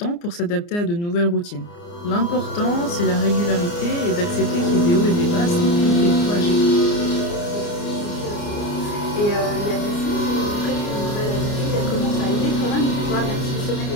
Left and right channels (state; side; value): late; right; 29 ms